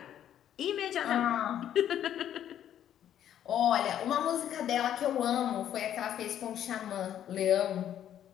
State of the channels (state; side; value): quieter; right; 10.6 dB